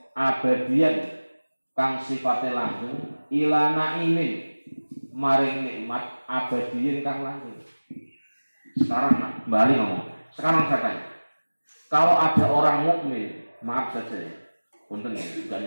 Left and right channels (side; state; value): both; inverted; correlation -1.00